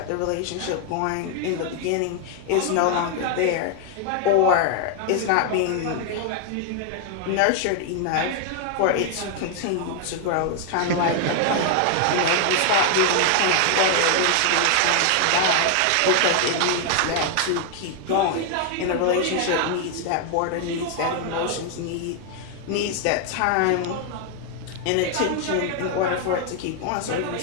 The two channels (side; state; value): both; different; correlation 0.00